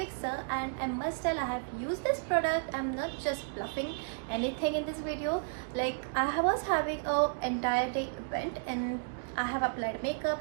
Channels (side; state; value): left; silent; digital silence